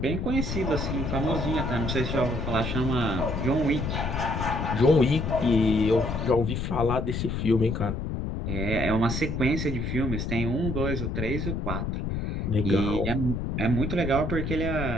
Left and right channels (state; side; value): noise; left; rumble, 2 dB below the sound